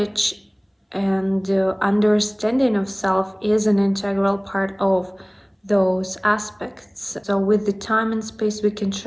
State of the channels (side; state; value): both; identical; correlation 1.00